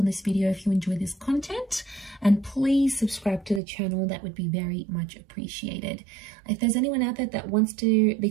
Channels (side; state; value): left; drops out; at 3.6 s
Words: this video if you enjoy this content, and please subscribe to the channel. That would be very much appreciated. If there's anyone out there that wants to